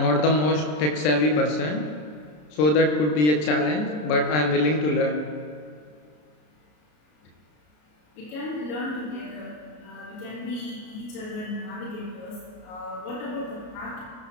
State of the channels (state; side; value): late; right; 33 ms